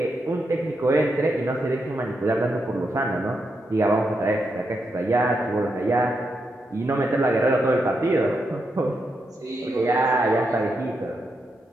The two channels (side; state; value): both; normal; correlation 0.83